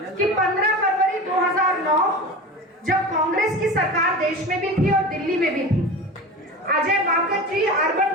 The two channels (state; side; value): normal; both; correlation 0.30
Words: कि 15 फरवरी 2009 जब कांग्रेस की सरकार देश में भी थी और दिल्ली में भी थी, अजय माकन जी अर्बन